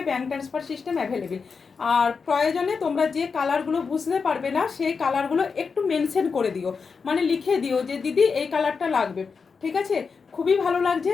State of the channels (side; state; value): right; quieter; 5.3 dB